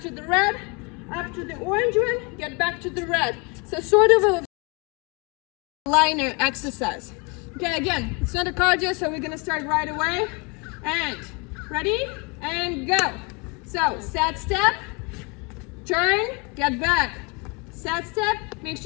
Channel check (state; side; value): quieter; right; 29.8 dB